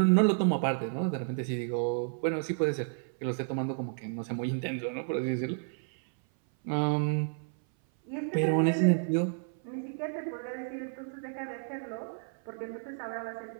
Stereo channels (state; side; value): silent; left; 57 dB below the other